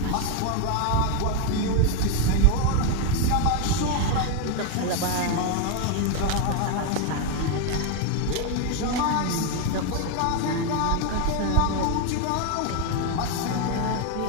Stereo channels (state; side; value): different; both; correlation 0.01